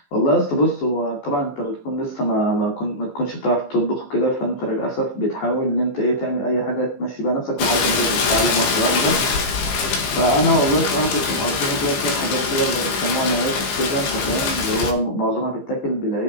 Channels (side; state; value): right; late; 15 ms